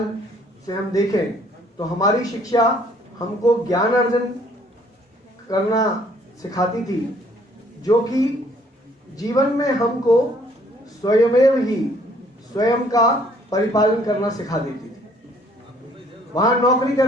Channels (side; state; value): both; normal; correlation 0.61